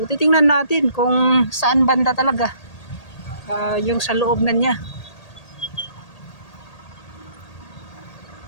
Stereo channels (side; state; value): right; late; 1.8 ms